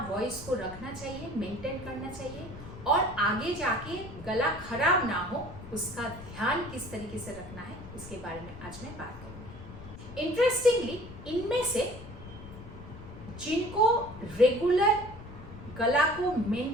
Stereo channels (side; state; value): left; noise; rumble, 14 dB below the sound